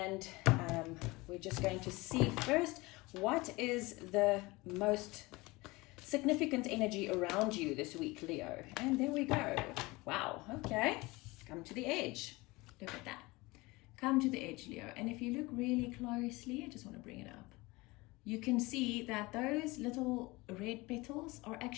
we're just going to see first what is the most significant energy around you this week, Leo. And there we go. Wow. Okay. Come to the edge. Look at that. Come to the edge, Leo. And if you look really closely, I just want to bring it up. You can see that those little red petals are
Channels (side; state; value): right; quieter; 22.6 dB